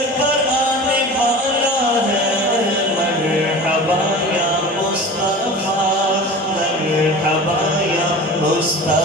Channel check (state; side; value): normal; both; correlation 0.36